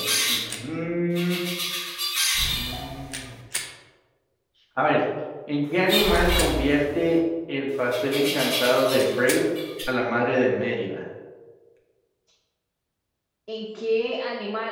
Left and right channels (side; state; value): both; identical; correlation 1.00